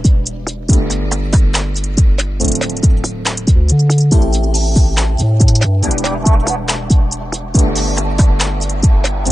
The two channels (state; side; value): normal; both; correlation 0.95